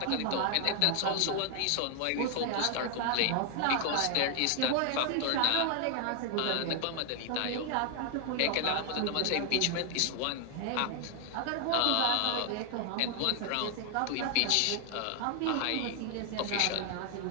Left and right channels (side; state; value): both; different; correlation 0.00